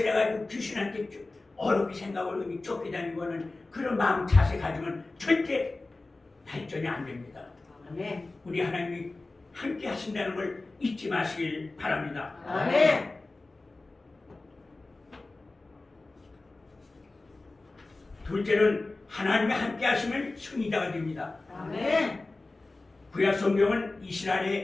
귀신한테 어렵게 생각을 쫓겨다니는 거는 그런 마음 자세 가지면 절대 발전이 안 됩니다. 아멘. 우리 하나님이 함께 하신다는 걸 잊지 마시길 바랍니다. 아멘. 둘째는 하나님이 함께 하시면 승리자가 됩니다. 아멘. 구약 성경은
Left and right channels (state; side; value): quieter; right; 3.2 dB